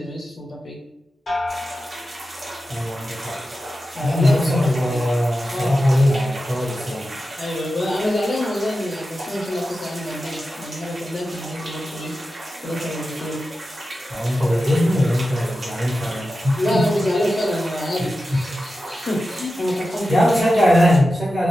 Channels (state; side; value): normal; both; correlation 0.92